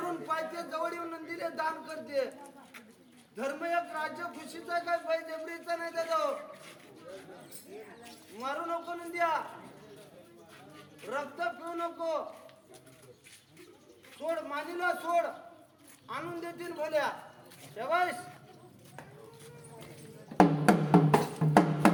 पायते जवळ येऊन नंदीले दान करते. धर्म एक राज्य खुशीचा काय बाई जबरीचा नाही दादा. मारू नको नंद्या रक्त पिऊ नको. सोड मानीला सोड आणून देतील भोल्या शेवाईस.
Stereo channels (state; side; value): identical; both; correlation 1.00